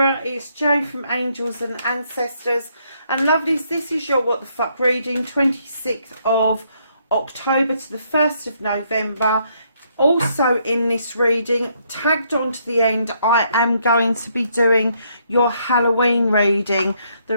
it's Jo from Angels and Ancestors. And lovelies, this is your What the Fuck reading, 26th of October to the 1st of November. Also in this reading, tagged on to the end, I am going to be doing your Halloween reading. The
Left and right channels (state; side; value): inverted; both; correlation -0.72